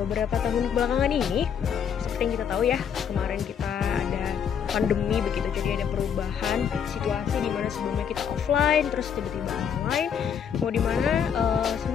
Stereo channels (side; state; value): right; quieter; 7.9 dB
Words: tahun belakangan ini, seperti yang kita tahu ya, kemarin kita ada pandemi begitu, jadi ada perubahan situasi di mana sebelumnya kita offline, terus tiba-tiba online. Mau di mana